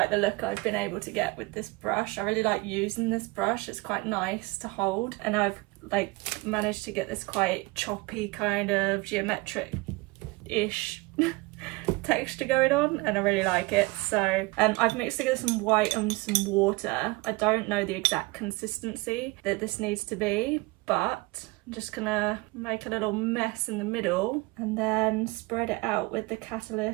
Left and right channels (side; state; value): left; quieter; 24.2 dB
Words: the look I've been able to get with this brush. I really like using this brush. It's quite nice to hold, and I've like managed to get this quite choppy kind of geometric-ish texture going on, and I really like it. So I've mixed together some white and some water. I don't know the exact consistency that this needs to be, but I'm just gonna make a little mess in the middle and then spread it out with the